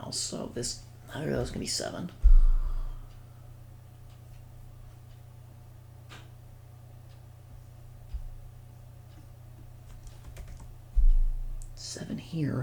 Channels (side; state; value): both; identical; correlation 1.00